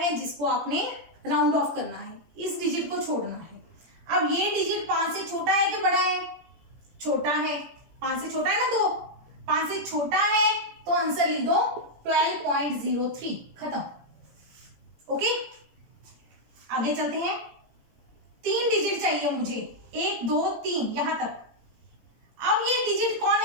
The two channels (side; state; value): left; late; 17 ms